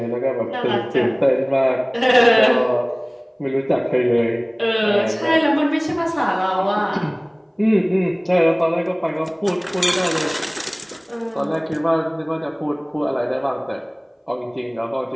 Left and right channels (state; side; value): identical; both; correlation 1.00